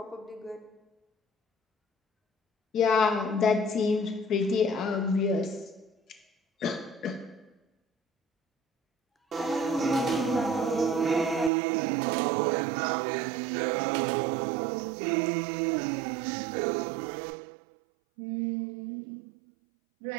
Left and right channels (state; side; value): drops out; left; at 11.5 s